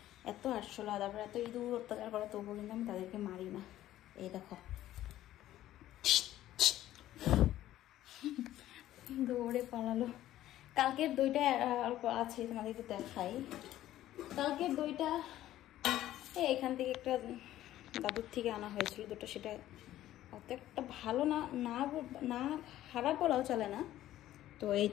এত আটশোলা, তারপরে এত ইঁদুর অত্যাচার করে, তবুও কিন্তু আমি তাদেরকে মারি না। এই দেখো দৌড়ে পালালো। কালকের দইটা অল্প আছে, তোমাদেরকে দেখাই। কালকের দইটা এখান থেকে একটা দাদুর থেকে আনা হয়েছিল দুটো, সেটা অত একটা ভালো না, না খারাপ বলাও চলে না। তো এই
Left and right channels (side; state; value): right; quieter; 13.7 dB